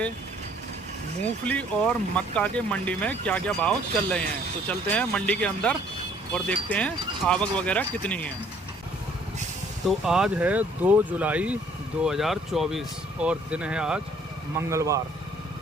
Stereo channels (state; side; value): normal; both; correlation 0.60